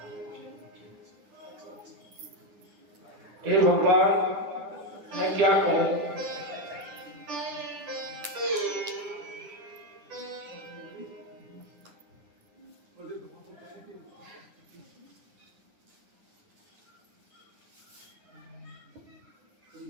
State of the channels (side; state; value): left; late; 10 ms